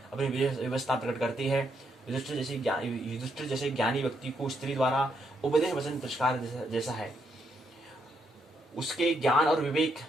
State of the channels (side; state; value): both; normal; correlation 0.77